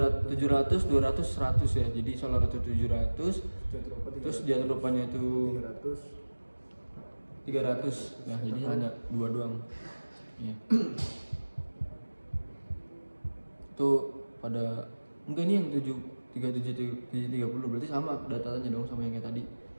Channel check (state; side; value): inverted; both; correlation -1.00